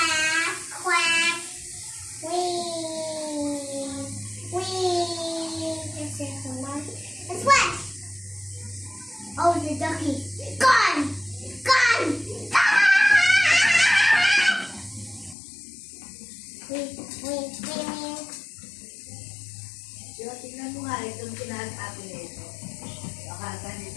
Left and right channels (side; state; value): right; drops out; at 15.4 s